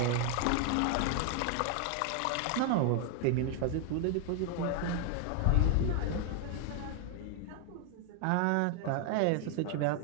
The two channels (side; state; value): both; different; correlation 0.00